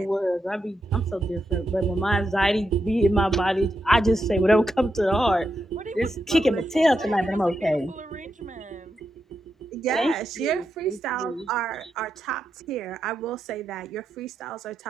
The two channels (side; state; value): both; normal; correlation 0.85